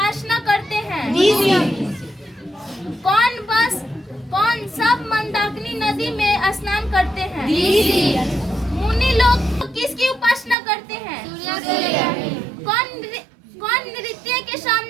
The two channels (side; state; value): left; drops out; at 10.6 s